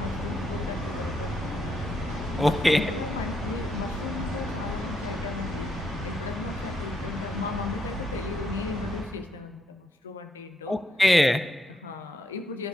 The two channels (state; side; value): normal; both; correlation 0.78